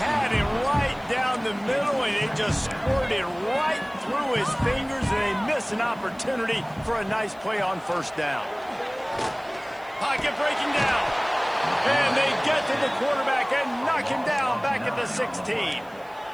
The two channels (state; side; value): noise; right; hiss, 29 dB below the sound